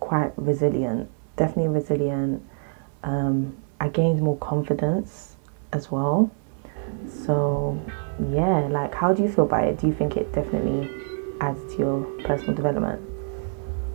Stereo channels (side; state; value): left; silent; digital silence